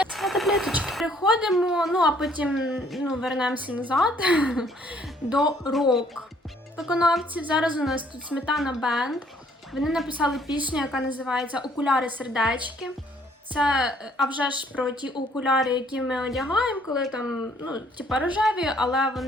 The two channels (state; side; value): normal; both; correlation 0.62